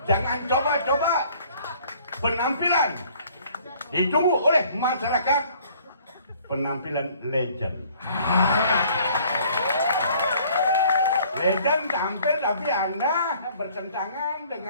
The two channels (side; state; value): both; inverted; correlation -0.57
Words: Jangan coba-coba penampilan ditunggu oleh masyarakat, penampilan legend. Legend tampil tapi Anda bertentangan